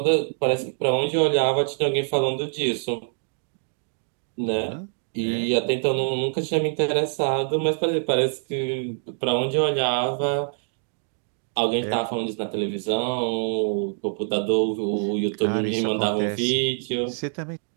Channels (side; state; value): left; silent; digital silence